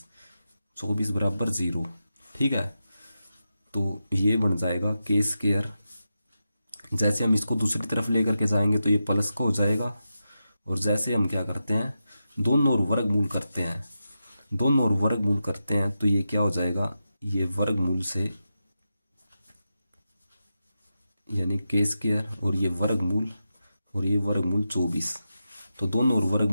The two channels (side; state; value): both; inverted; correlation -0.89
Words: 24 बराबर 0। ठीक है, तो ये बन जाएगा के स्क्वायर। जैसे हम इसको दूसरी तरफ लेकर के जाएंगे तो ये प्लस का हो जाएगा, और जैसे हम क्या करते हैं, दोनों ओर वर्गमूल करते हैं, दोनों ओर वर्गमूल करते हैं तो ये क्या हो जाएगा, ये वर्गमूल से, यानी के स्क्वायर और ये वर्गमूल, और ये वर्गमूल 24, तो दोनों ओर